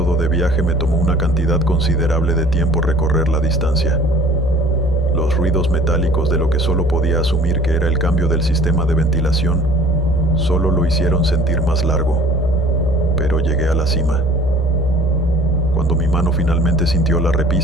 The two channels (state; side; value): normal; both; correlation 0.49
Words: de viaje me tomó una cantidad considerable de tiempo recorrer la distancia. Los ruidos metálicos de lo que solo podía asumir que era el cambio del sistema de ventilación solo lo hicieron sentir más largo, pero llegué a la cima. Cuando mi mano finalmente sintió la